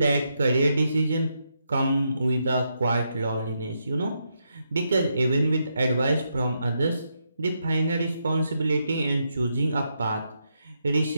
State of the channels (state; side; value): inverted; both; correlation -0.81